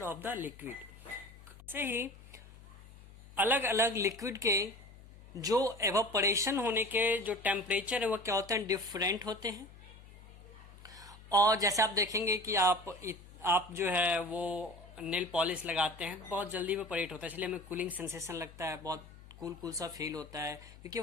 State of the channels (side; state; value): left; noise; hum, 20 dB below the sound